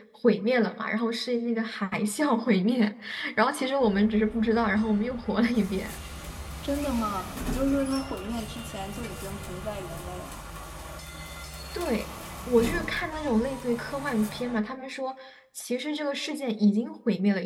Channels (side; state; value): both; identical; correlation 1.00